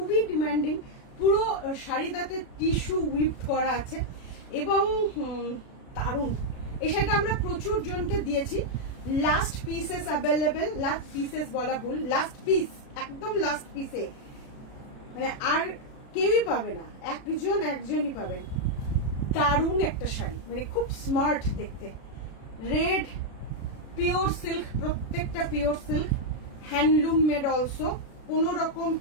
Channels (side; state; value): right; late; 36 ms